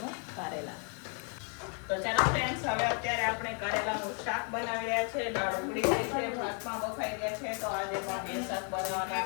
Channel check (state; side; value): quieter; right; 39.8 dB